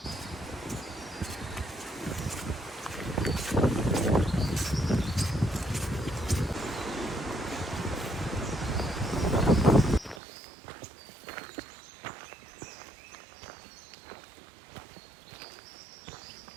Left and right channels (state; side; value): drops out; left; at 10.2 s